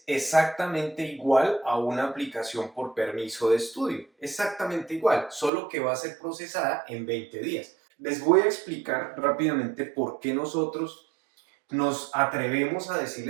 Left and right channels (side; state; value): left; drops out; at 5.5 s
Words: exactamente igual a una aplicación por permiso de estudio, exactamente igual, solo que va a ser procesada en 20 días. Les voy a explicar rápidamente por qué nosotros nos atrevemos a